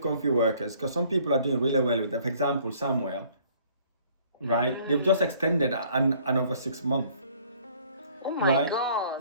workers, because some people are doing really well with them. For example, Samuel, right? They've just extended another 6 months. Oh my Right?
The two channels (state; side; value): inverted; both; correlation -0.58